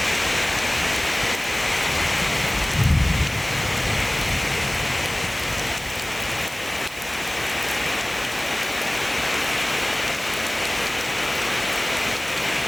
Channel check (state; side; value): noise; right; hiss, 15 dB below the sound